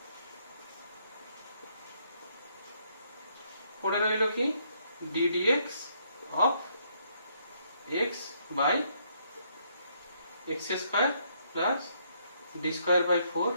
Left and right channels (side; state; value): both; inverted; correlation -0.71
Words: পড়ে রইল কি ddx of x by x square plus d square by 4